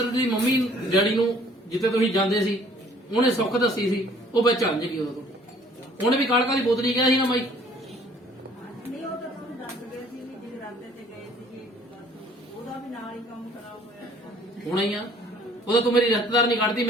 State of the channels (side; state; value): both; normal; correlation 0.56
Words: ਮੰਮੀ ਡੈਡੀ ਨੂੰ ਜਿੱਥੇ ਤੁਸੀਂ ਜਾਂਦੇ ਸੀ ਉਹਨੇ ਸੁੱਖ ਦੱਸੀ ਸੀ ਉਹ ਵਿੱਚ ਅੰਜ ਗਈ ਉਦੋਂ ਉਹਨੇ ਵੀ ਕਾਲਕਾ ਦੀ ਬੋਤਲ ਹੀ ਕਿਹਾ ਸੀ ਨਾ ਮਾਈ ਨਹੀਂ ਉਹ ਤਾਂ ਤੁਹਾਨੂੰ ਦੱਸ ਗਏ ਸੀ ਵੀ ਜਿਹੜੇ ਰਾਤੇ ਤੇ ਗਏ ਸੀ ਉਹਦਾ ਵੀ ਨਾਲ ਹੀ ਕੰਮ ਖਰਾਬ ਹੋਇਆ ਹੋਣਾ ਹੀ ਆ ਉਹਦਾ ਤੂੰ ਮੇਰੀ ਰਿਸ਼ਤੇਦਾਰ ਨਹੀਂ ਕੱਢਦੀ